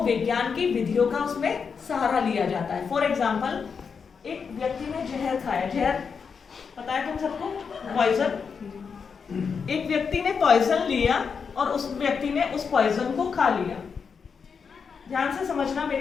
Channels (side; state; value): right; quieter; 5.9 dB